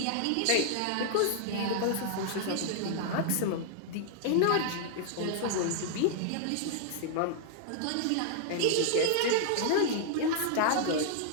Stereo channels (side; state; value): both; different; correlation 0.00